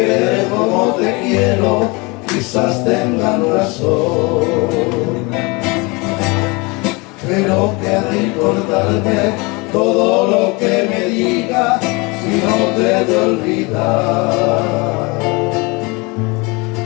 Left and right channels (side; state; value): right; quieter; 27.0 dB